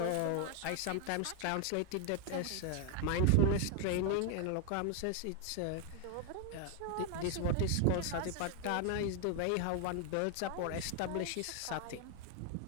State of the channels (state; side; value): different; both; correlation 0.00